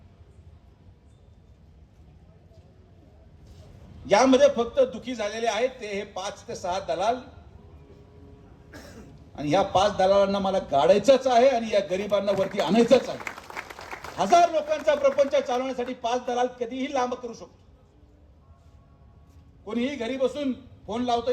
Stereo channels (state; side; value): identical; both; correlation 1.00